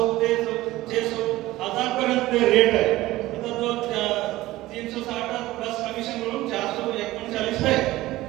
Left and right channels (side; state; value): left; quieter; 17.2 dB